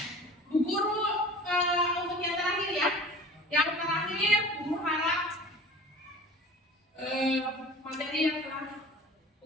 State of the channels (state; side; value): normal; both; correlation 0.42